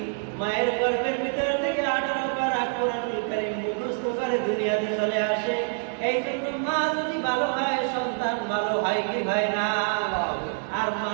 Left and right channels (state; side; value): silent; left; 60 dB below the other